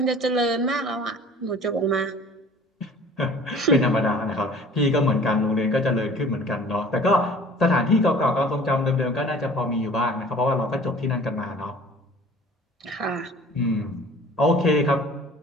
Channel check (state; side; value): normal; both; correlation 0.48